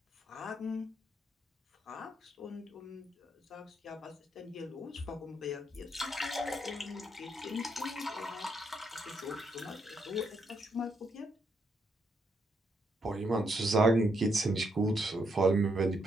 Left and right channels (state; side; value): normal; both; correlation 0.77